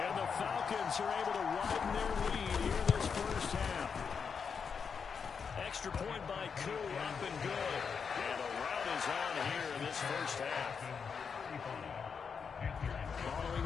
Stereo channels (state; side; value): quieter; right; 6.1 dB